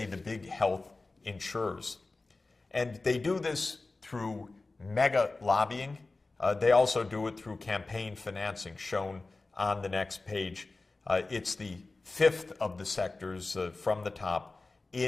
the big health insurers. And they do this through mega lobbying. They also do it through campaign financing, shown on the next page. It's the fifth of the sectors from the top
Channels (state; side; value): quieter; right; 3.4 dB